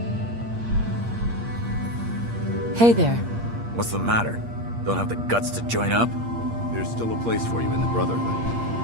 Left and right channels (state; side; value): late; left; 8.6 ms